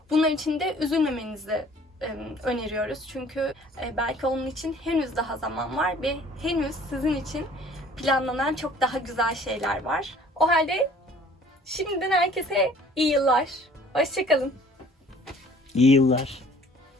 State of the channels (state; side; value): normal; both; correlation 0.53